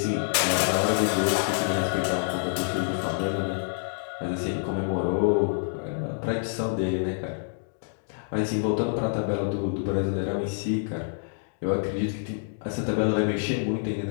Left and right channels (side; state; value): right; silent; digital silence